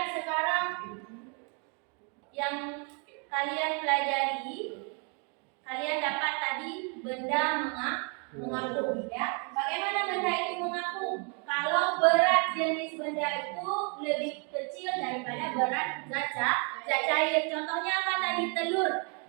sekarang yang kalian pelajari. Kalian dapat tadi benda mengapung ya. Bagaimana benda itu mengapung? Kalau berat jenis benda itu lebih kecil daripada berat zat cair. Contohnya apa tadi? Telur.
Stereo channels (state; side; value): quieter; left; 36.8 dB